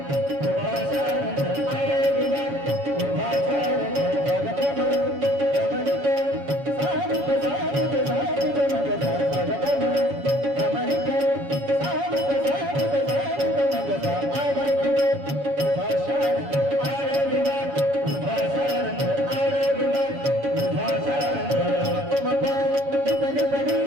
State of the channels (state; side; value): late; left; 7.1 ms